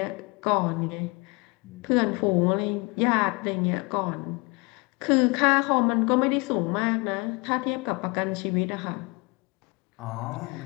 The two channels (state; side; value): quieter; right; 27.9 dB